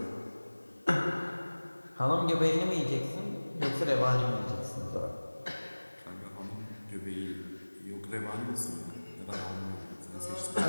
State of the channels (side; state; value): both; inverted; correlation -1.00